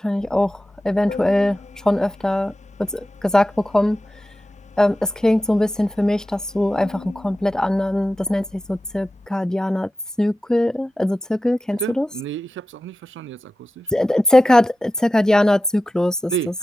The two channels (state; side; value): normal; both; correlation 0.93